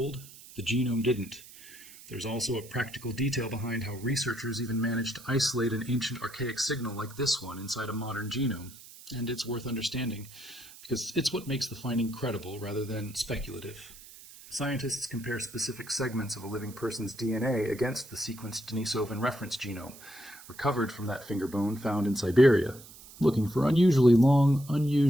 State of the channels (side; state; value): right; noise; hiss, 19 dB below the sound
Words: the genome didn't. There's also a practical detail behind how researchers even managed to isolate an ancient archaic signal like this one inside a modern genome. And it's worth understanding, because it's what makes the finding credible rather than speculative. Scientists compare specific segments of a living person's DNA against the sequenced Denisovan reference genome, recovered from that finger bone found in Siberia, looking for unusually long,